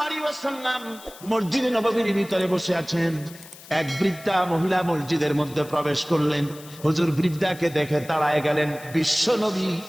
আলাইহি ওয়াসাল্লাম মসজিদে নববীর ভিতরে বসে আছেন। এক বৃদ্ধা মহিলা মসজিদের মধ্যে প্রবেশ করলেন। হুজুর বৃদ্ধাকে দেখে দাঁড়ায় গেলেন, বিশ্ব নবী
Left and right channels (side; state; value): left; noise; hiss, 19 dB below the sound